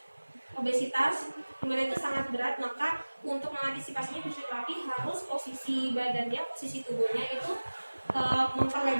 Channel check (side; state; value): both; inverted; correlation -1.00